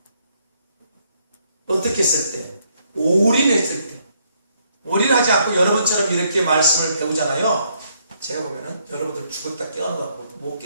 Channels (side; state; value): both; inverted; correlation -0.71